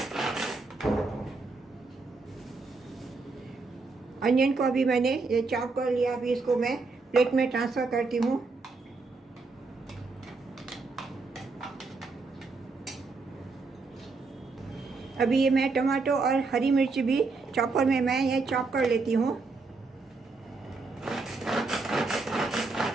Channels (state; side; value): quieter; left; 3.9 dB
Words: अनियन को अभी मैंने ये चॉप कर लिया। अभी इसको मैं प्लेट में ट्रांसफ़र करती हूँ। अभी ये मैं टमाटो और हरी मिर्च भी चॉपर में मैं ये चॉप कर लेती हूँ।